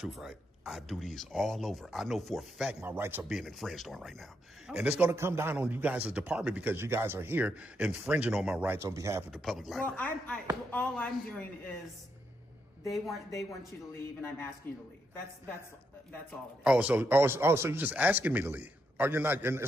right? I do these all over. I know for a fact my rights are being infringed on right now. And it's going to come down on you guys' department because you guys are here infringing on my rights on behalf of the public library. Well, all I'm doing is they want you to leave, and I'm asking you to leave. That's all it is. So you're just asking me to leave. Or you're not,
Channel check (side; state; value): both; normal; correlation 0.80